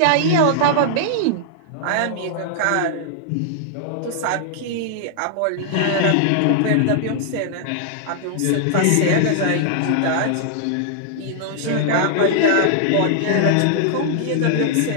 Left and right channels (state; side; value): different; both; correlation -0.01